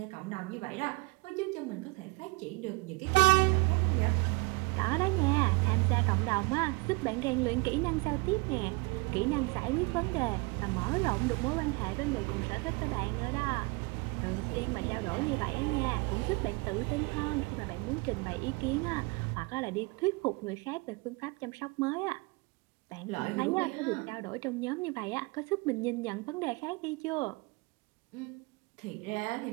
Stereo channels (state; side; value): quieter; left; 25.9 dB